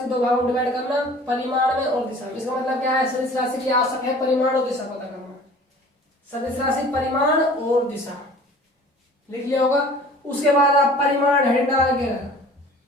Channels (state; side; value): normal; both; correlation 0.47